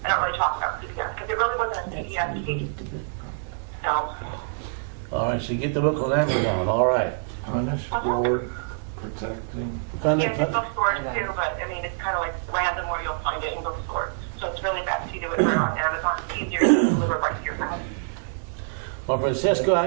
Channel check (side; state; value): left; silent; digital silence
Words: I don't really talk about CPS because it really wasn't a CPS case. So. All right, so you get the book on Amazon. All right. Punish for protecting. Yeah, it's bookstores too, but I mean, it's kind of like random where you'll find it in bookstores. So it's really best to do it right on Amazon. It's easier to deliver right to your house. Well, Francesca,